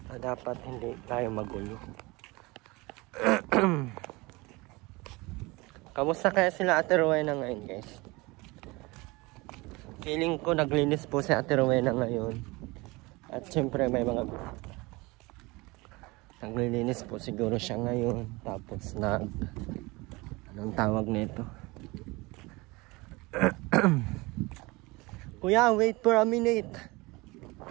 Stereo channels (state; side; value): quieter; left; 23.7 dB